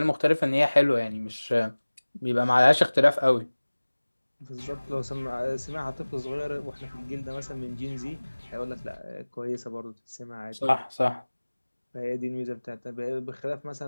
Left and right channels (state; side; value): inverted; both; correlation -1.00